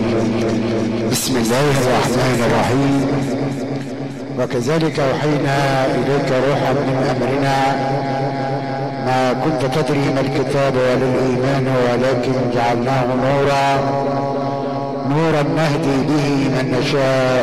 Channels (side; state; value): both; identical; correlation 1.00